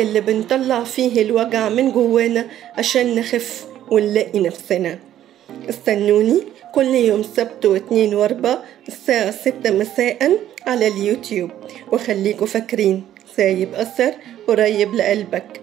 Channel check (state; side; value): quieter; left; 11.8 dB